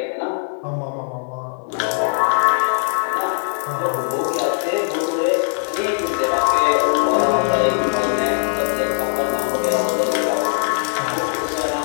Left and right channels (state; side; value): silent; right; digital silence